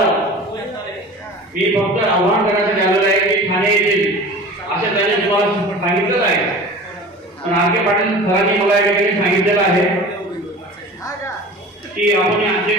मी फक्त आव्हान करण्यासाठी आलेलो आहे की ठाणे येथील अशा त्याने तुम्हाला सांगितलं आहे आणि आरके पाटील सरांनी मला या ठिकाणी सांगितलेलं आहे की आपण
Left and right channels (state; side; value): normal; both; correlation 0.38